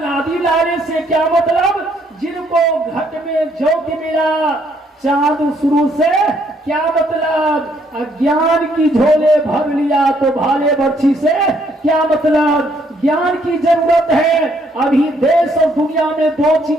लाने से क्या मतलब? जिनको घट में ज्योति मिला चांद शुरू से क्या मतलब? अज्ञान की झोले भर लिया तो भाले बर्छी से क्या मतलब? ज्ञान की जरूरत है। अभी देश और दुनिया में 2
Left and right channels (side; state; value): both; normal; correlation 0.69